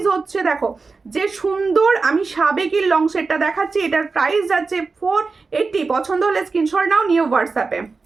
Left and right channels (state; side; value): quieter; left; 4.3 dB